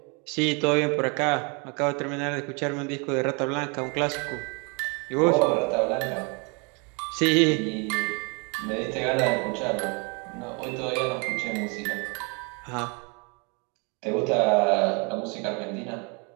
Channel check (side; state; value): left; quieter; 32.9 dB